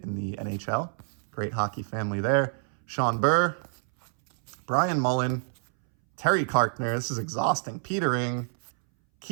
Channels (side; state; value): left; silent; 60 dB below the other